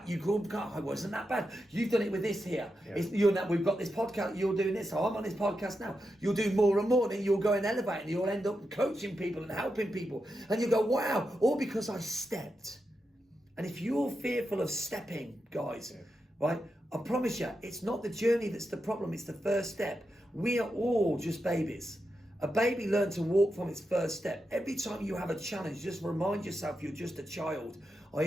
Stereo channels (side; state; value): both; normal; correlation 0.87